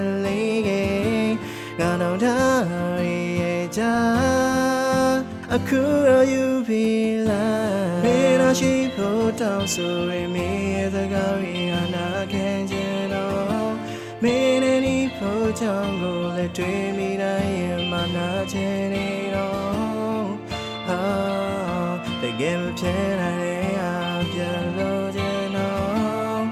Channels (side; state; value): both; identical; correlation 1.00